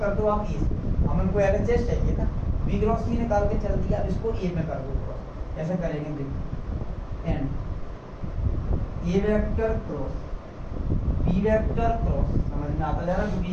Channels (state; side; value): identical; both; correlation 1.00